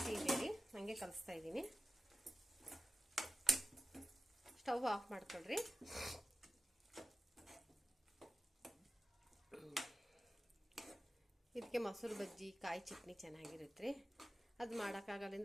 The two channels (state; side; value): normal; both; correlation 0.94